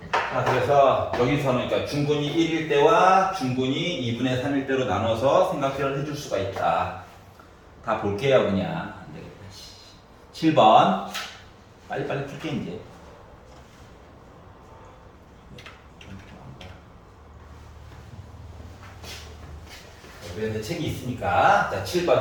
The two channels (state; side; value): identical; both; correlation 1.00